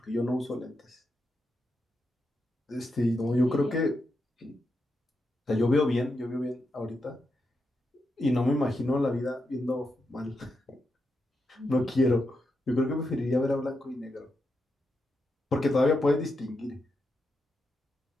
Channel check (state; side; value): normal; both; correlation 0.85